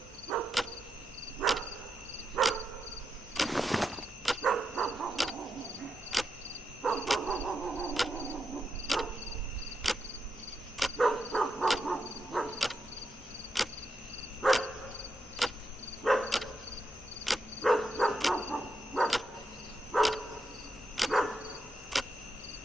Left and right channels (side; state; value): both; normal; correlation 0.85